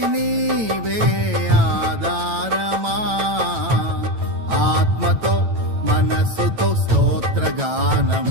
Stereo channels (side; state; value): left; late; 9.1 ms